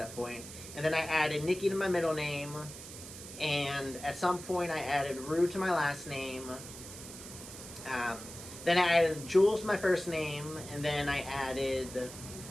point. And then I added Nikki to my middle name. And at some point I added Roode to my last name. Then I added Jules to my first name. And then I added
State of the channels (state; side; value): noise; right; hiss, 13 dB below the sound